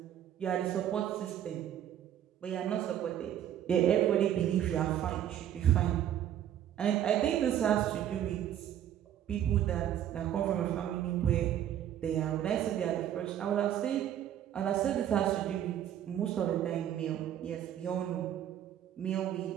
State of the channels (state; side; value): quieter; left; 10.8 dB